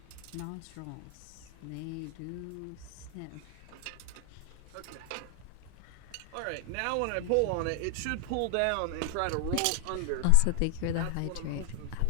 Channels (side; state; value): both; different; correlation 0.00